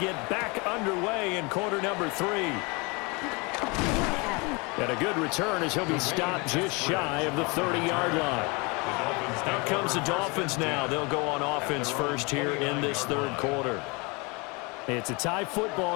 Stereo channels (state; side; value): quieter; right; 28.5 dB